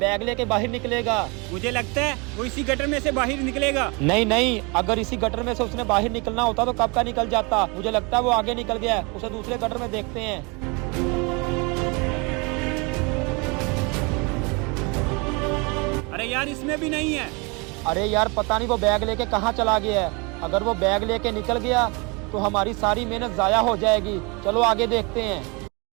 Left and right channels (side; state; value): left; quieter; 29.7 dB